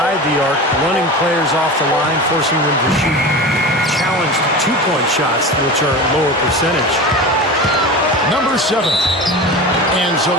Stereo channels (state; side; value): normal; both; correlation 0.29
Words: the arc, running players off the line, forcing them to shoot challenged two-point shots, which are lower percentage. Number 7. And so